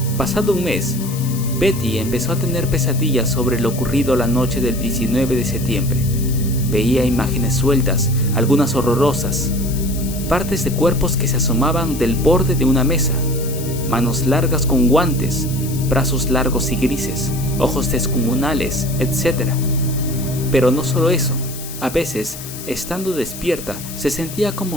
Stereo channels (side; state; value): left; noise; hiss, 12 dB below the sound